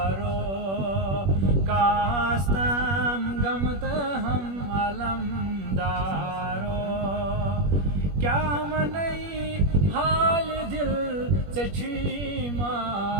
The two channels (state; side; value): late; left; 21 ms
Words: कास्तम गमत हम अलमदारो, क्या मनई हाल दिल से छी